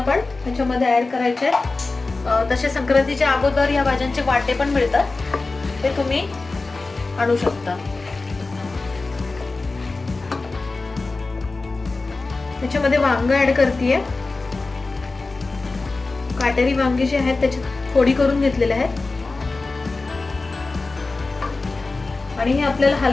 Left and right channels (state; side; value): quieter; right; 3.6 dB